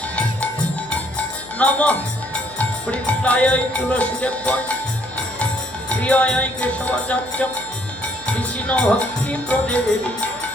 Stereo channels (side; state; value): left; noise; hum, 22 dB below the sound